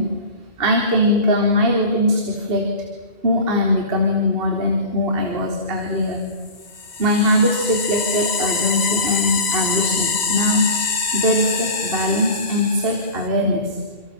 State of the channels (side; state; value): left; late; 2.0 ms